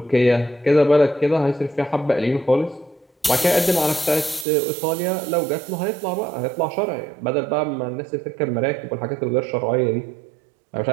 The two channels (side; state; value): left; drops out; at 4.5 s